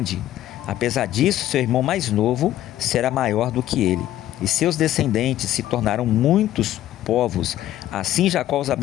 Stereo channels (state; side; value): quieter; right; 13.2 dB